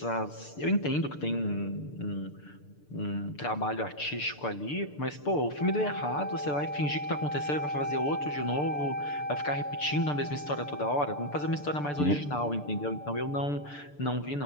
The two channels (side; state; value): right; late; 6.8 ms